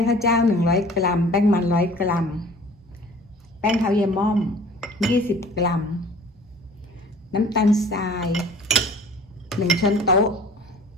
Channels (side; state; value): both; normal; correlation 0.47